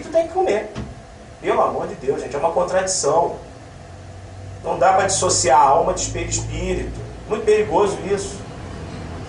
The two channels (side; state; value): both; identical; correlation 1.00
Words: tem que comer. Pelo amor de Deus, gente, é uma contradição. Não dá para dissociar a alma de perispírito. Muito perigoso isso.